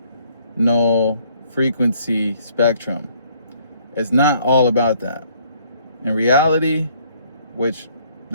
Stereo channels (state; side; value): inverted; both; correlation -0.64